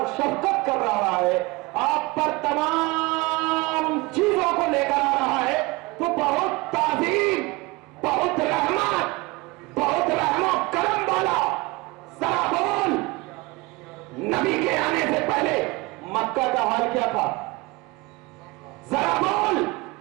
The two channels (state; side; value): quieter; left; 23.8 dB